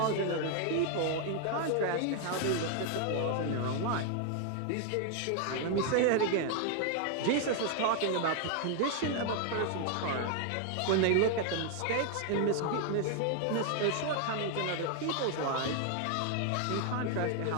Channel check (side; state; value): both; different; correlation 0.00